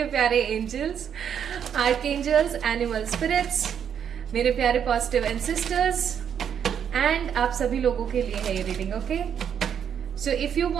प्यारे एंजल्स, आर्कएंजल्स, एनिमल स्पिरिट्स, मेरे प्यारे पॉजिटिव एंसेस्टर्स, एंड आप सभी लोगों के लिए है ये reading. Okay, so if you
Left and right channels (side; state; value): left; quieter; 8.3 dB